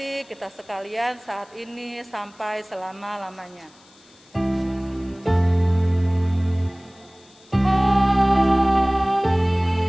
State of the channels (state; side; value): noise; left; hiss, 28 dB below the sound